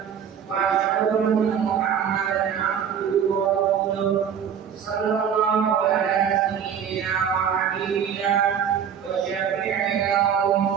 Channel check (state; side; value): quieter; left; 8.1 dB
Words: wa asyhadu anna Muhammadan abduhu wa rasuluh sallallahu ala sayyidina wa habibina wa syafi'ina wa